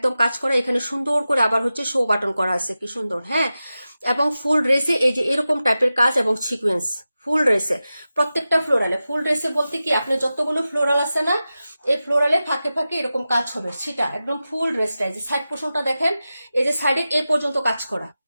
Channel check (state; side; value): inverted; both; correlation -0.94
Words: কাজ করা, এখানে সুন্দর করে আবার হচ্ছে শো বাটন করা আছে, কি সুন্দর। হ্যাঁ, এবং ফুল ড্রেসে এই যে এরকম টাইপের কাজ এবং সিকোয়েন্স, ফুল ড্রেসে প্রত্যেকটা ফ্লোরালে, ফুল ড্রেসে বলতে কি, আপনি যতগুলো ফ্লোরাল আছে না, এই ফ্লোরালে ফাঁকে ফাঁকে এরকম কাজ হবে, সেটা একদম ফুল ড্রেসটা। এই যে সাইড পোর্শনটা দেখেন, এই যে সাইডে এ পর্যন্ত কাজ করা,